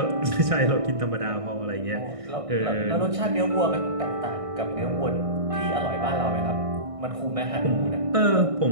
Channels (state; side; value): late; left; 1.6 ms